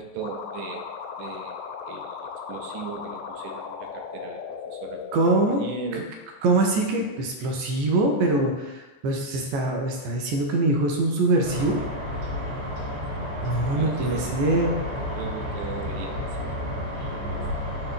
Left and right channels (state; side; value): late; left; 15 ms